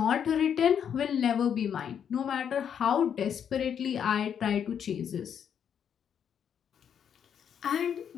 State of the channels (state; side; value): quieter; right; 8.3 dB